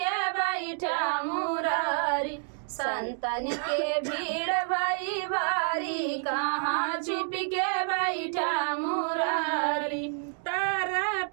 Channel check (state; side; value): silent; left; 59 dB below the other